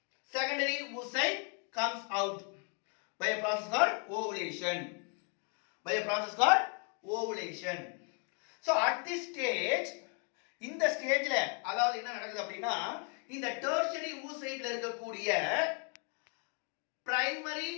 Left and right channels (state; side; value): quieter; right; 37.5 dB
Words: secondary oocyte comes out by a process called ovulation. By a process called ovulation. So at this stage, இந்த ஸ்டேஜ்ல அதாவது என்ன நடக்குது அப்படின்னா, இந்த tertiary oocyteல இருக்கக்கூடிய